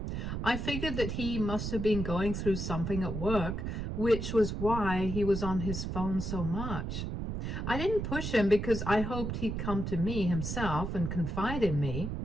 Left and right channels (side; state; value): right; noise; rumble, 3 dB below the sound